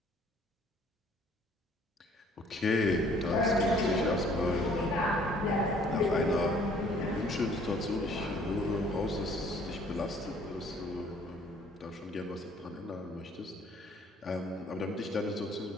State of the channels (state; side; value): normal; both; correlation 0.58